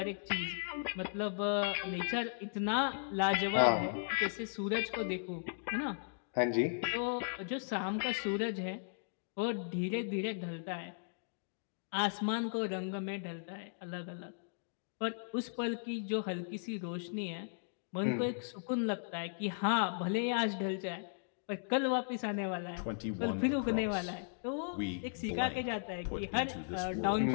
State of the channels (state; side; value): silent; right; digital silence